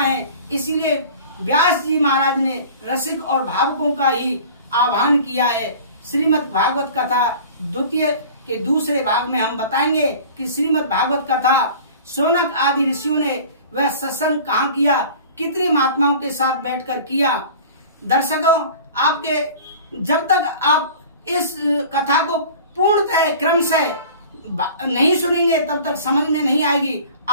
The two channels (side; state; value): both; inverted; correlation -0.43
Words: इसीलिए व्यास जी महाराज ने रसिक और भावुकों का ही आह्वान किया है। श्रीमद् भागवत कथा द्वितीय के दूसरे भाग में हम बताएंगे कि श्रीमद् भागवत कथा शौनक आदि ऋषियों ने वह सत्संग कहाँ किया, कितने महात्माओं के साथ बैठकर किया। दर्शकों, आपके जब तक आप इस कथा को पूर्णतः क्रमशः नहीं सुनेंगे तब तक समझ में नहीं आएगी।